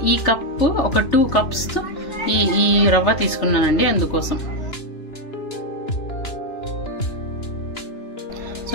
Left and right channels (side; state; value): right; late; 3.4 ms